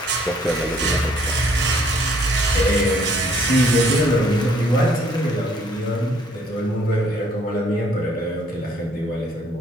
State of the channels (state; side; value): normal; both; correlation 0.63